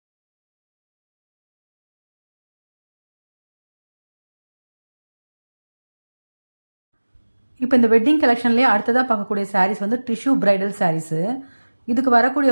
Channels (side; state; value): both; inverted; correlation -1.00